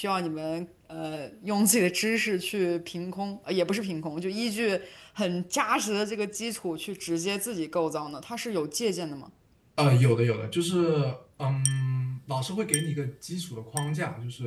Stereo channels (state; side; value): identical; both; correlation 1.00